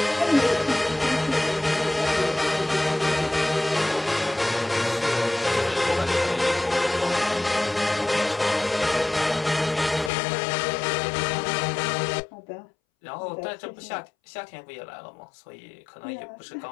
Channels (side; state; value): right; drops out; at 10.1 s